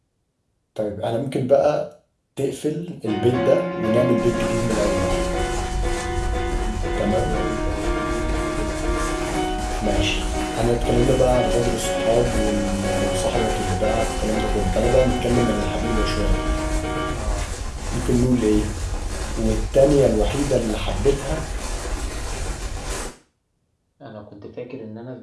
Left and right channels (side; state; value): both; identical; correlation 1.00